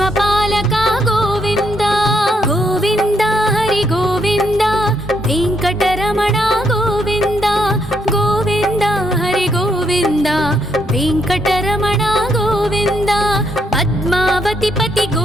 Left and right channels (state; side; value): normal; both; correlation 0.75